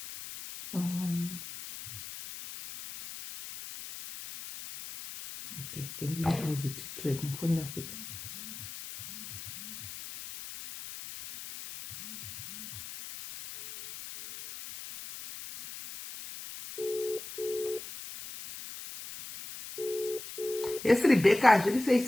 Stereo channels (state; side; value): noise; left; hiss, 11 dB below the sound